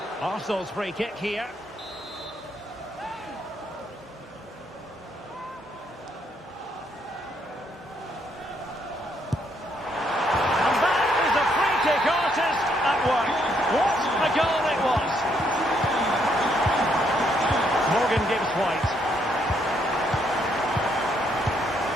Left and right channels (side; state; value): both; normal; correlation 0.73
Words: Arsenal's free kick here.